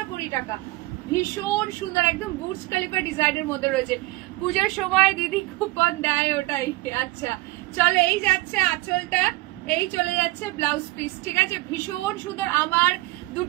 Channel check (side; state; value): left; quieter; 20.7 dB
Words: টাকা, ভীষণ সুন্দর, একদম বুর্জ খলিফা ডিজাইনের মধ্যে রয়েছে। পুজোর সময় দিদি কুপন দেয় ওটাই। আচ্ছা চলো এই যাচ্ছে আঁচলটা, এই চলে যাচ্ছে ব্লাউজ পিস, ঠিক আছে, ভীষণ সুন্দর। আমার